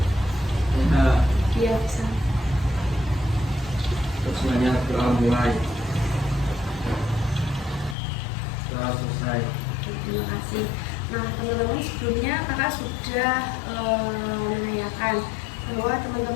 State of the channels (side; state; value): right; drops out; at 8.0 s